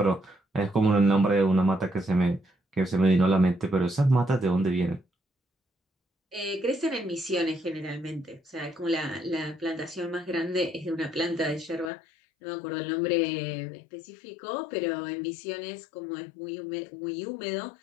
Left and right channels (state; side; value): drops out; right; at 11.9 s